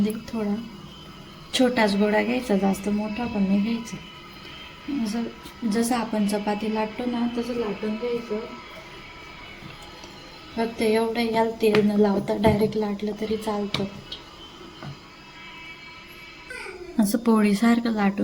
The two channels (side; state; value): both; identical; correlation 1.00